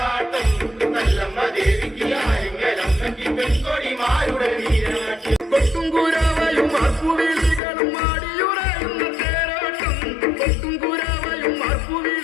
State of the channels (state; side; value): drops out; right; at 7.6 s